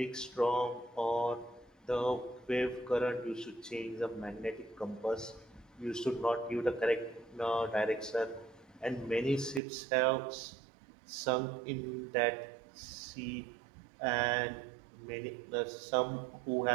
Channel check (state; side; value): drops out; left; at 9.6 s